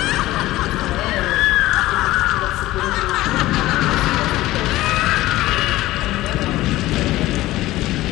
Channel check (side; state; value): right; quieter; 16.9 dB